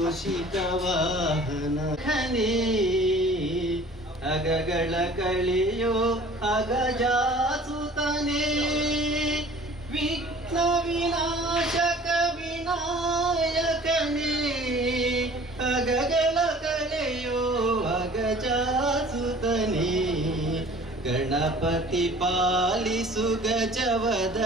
ವಾಹನ ಖನೇ ಅಗಗಳ ಕಳೆಯೋ ಅಗಜಾಸುತನೇ ವಿಘ್ನ ವಿನಾಶಕ ವಿನಾಯಕನೇ ಅಗಗಳ ಕಳೆಯೋ ಅಗಜಾಸುತನೇ ಗಣಪತಿ ಪಾಲಿಸು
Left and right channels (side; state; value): both; normal; correlation 0.48